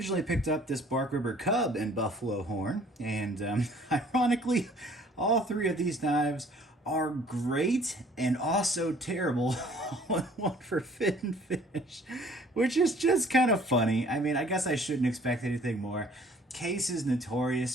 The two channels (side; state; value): both; normal; correlation 0.55